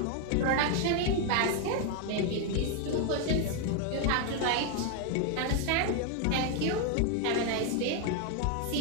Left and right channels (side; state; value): both; different; correlation 0.01